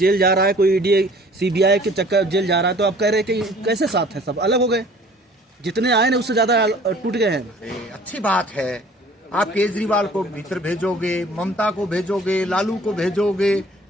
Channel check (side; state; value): both; normal; correlation 0.52